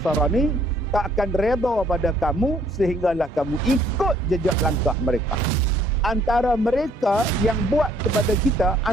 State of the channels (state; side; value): normal; both; correlation 0.63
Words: tak akan reda pada kamu sehinggalah kamu ikut jejak langkah mereka. Antara mereka yang buat kepada kita,